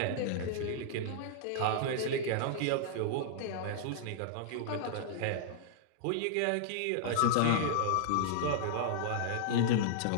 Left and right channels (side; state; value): both; different; correlation -0.01